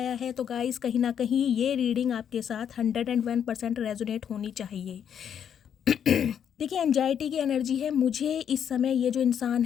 है, तो गाइस कहीं ना कहीं ये रीडिंग आपके साथ 101% रेजोनेट होनी चाहिए। देखिए एंजाइटी की एनर्जी है, मुझे इस समय ये जो इंसान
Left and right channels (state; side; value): quieter; right; 8.6 dB